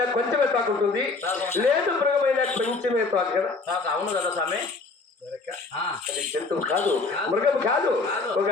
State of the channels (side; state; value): right; quieter; 3.9 dB